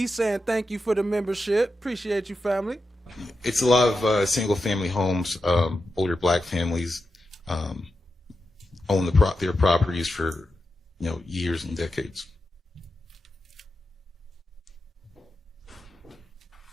saying thank you for the membership. Appreciate you, family. It's a lot of single-family homes. Older black families own their properties for years and decades.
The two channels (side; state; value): both; normal; correlation 0.89